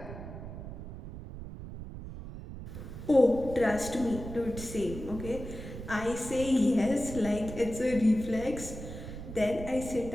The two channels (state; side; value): noise; right; rumble, 10 dB below the sound